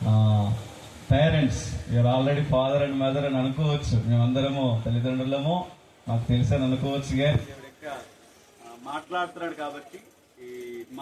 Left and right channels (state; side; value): identical; both; correlation 1.00